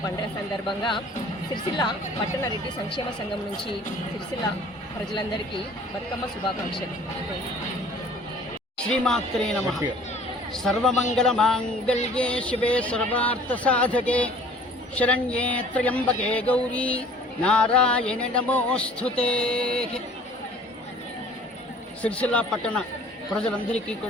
పండుగ సందర్భంగా సిరిసిల్ల పట్టణ రెడ్డి సంక్షేమ సంఘం నుంచి సిరిసిల్ల ప్రజలందరికీ బతుకమ్మ శుభాకాంక్షలు. శ్రీమాత్రే నమః. సర్వమంగళ మాంగళ్యే శివే సర్వార్థ సాధకే శరణ్యే త్ర్యంబకే గౌరీ నారాయణ నమోస్తుతే. సిరిసిల్ల పట్టణ ప్రజలందరికీ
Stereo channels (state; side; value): normal; both; correlation 0.50